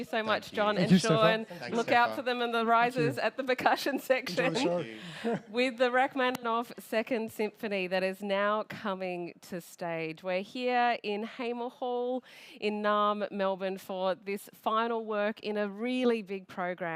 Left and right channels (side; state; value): both; identical; correlation 1.00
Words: so much, you. John Thank and you, Steffa. Sean. Thanks, Look out Steffa. for them in the risers at the percussion section. Enjoy the show. With the Rachmaninov Second Symphony that is now coming to stage. We're here in Hamer Hall in Naarm, Melbourne for this final work in a really big